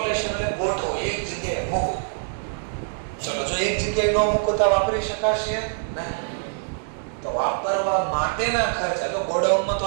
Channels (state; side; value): silent; left; digital silence